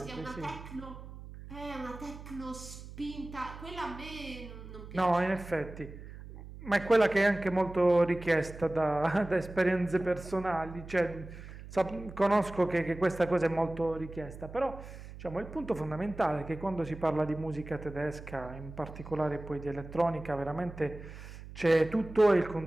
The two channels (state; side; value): noise; right; hum, 14 dB below the sound